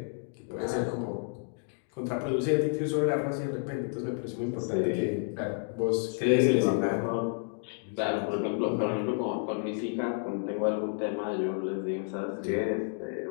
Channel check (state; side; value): silent; right; 57 dB below the other